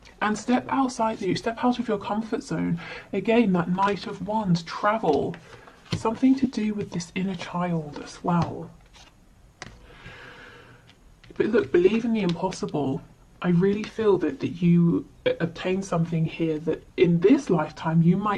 And step out of your comfort zone. Again, that Knight of Wands, travel, something to do with this inner child as well. But look, believe in the impossible. I really feel that you obtain something here that in this lifetime you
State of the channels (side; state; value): both; identical; correlation 1.00